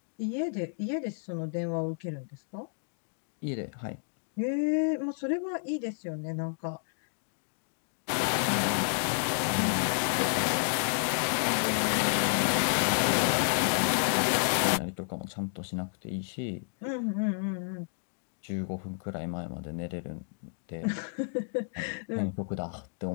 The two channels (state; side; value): silent; right; digital silence